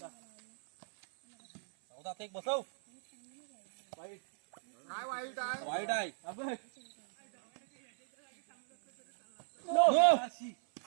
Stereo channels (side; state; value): left; silent; 54 dB below the other